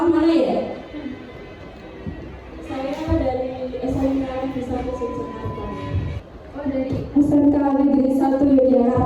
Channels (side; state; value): both; identical; correlation 1.00